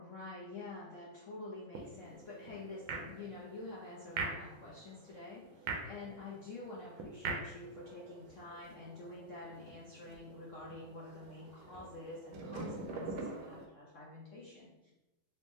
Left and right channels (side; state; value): both; normal; correlation -0.06